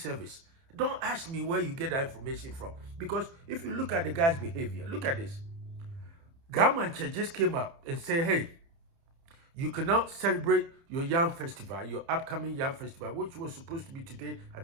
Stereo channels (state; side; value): late; left; 30 ms